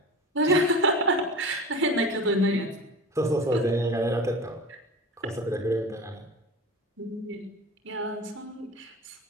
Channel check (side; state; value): both; normal; correlation 0.32